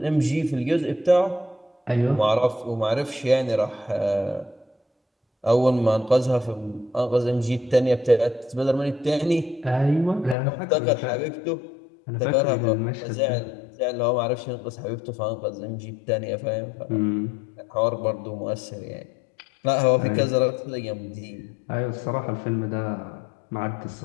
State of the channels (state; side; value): drops out; right; at 10.4 s